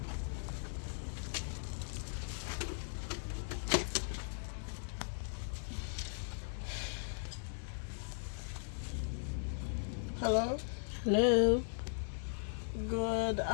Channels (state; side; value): silent; right; digital silence